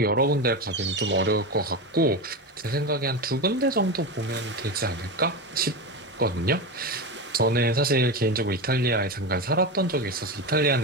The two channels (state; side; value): normal; both; correlation 0.19